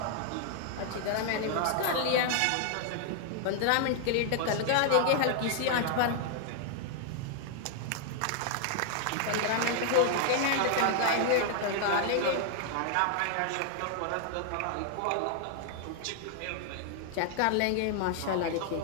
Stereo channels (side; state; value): both; different; correlation 0.00